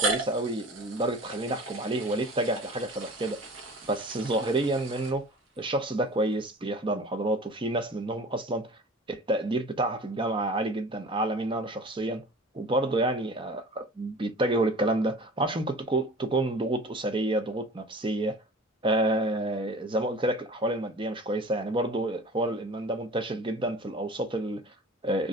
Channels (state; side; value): normal; both; correlation 0.41